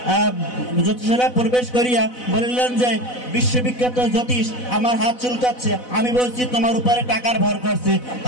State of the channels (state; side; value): late; right; 4.0 ms